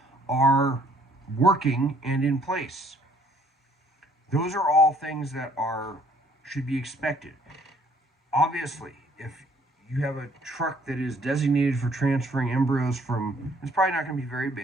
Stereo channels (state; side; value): normal; both; correlation 0.62